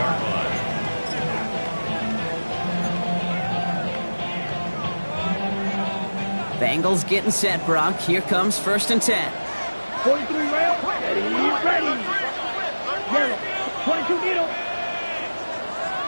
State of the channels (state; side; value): inverted; both; correlation -1.00